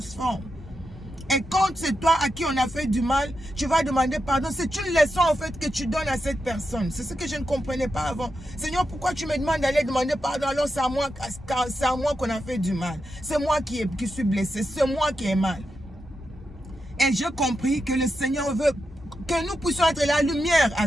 Et quand c'est toi à qui on a fait du mal, tu vas demander pardon. C'est une leçon en fait que tu donnes à cette personne. C'est ce que je ne comprenais pas avant. Seigneur, pourquoi tu me demandes d'aller demander pardon alors c'est à moi qu'on a fait du mal. C'est moi qui suis blessé. C'est moi qui ai mal. Et j'ai compris que le Seigneur veut que nous puissions être la lumière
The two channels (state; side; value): normal; both; correlation 0.87